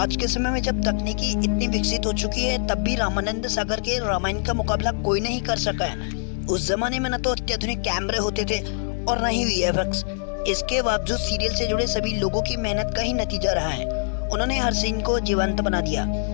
के समय में जब तकनीकी इतनी विकसित हो चुकी है तब भी रामानंद सागर के रामायण का मुकाबला कोई नहीं कर सका है। उस जमाने में न तो अत्याधुनिक कैमरे होते थे और न ही वीएफएक्स। इसके बावजूद सीरियल से जुड़े सभी लोगों की मेहनत का ही नतीजा रहा है। उन्होंने हर सीन को जीवंत बना दिया।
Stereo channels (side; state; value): right; silent; digital silence